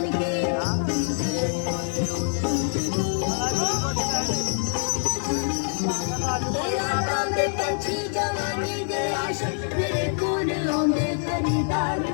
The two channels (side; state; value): right; silent; 62 dB below the other